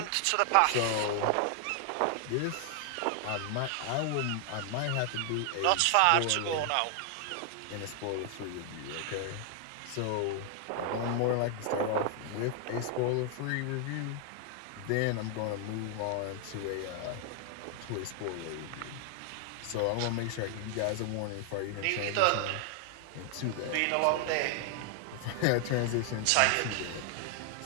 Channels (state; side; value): different; both; correlation 0.00